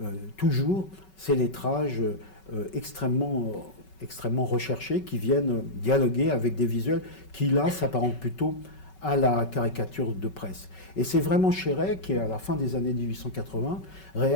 toujours ces lettrages extrêmement recherchés qui viennent dialoguer avec des visuels qui, là, s'apparentent plutôt à la caricature de presse. Et c'est vraiment Chéret qui, à la fin des années 1880,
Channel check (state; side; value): late; right; 5.3 ms